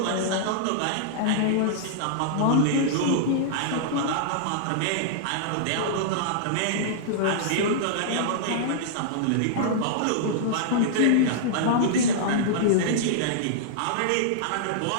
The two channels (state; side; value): different; both; correlation -0.02